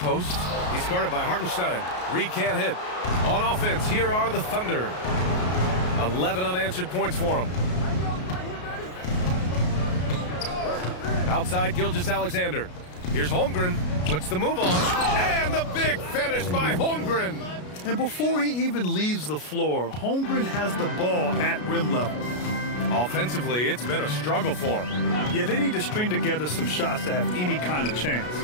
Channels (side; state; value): right; late; 33 ms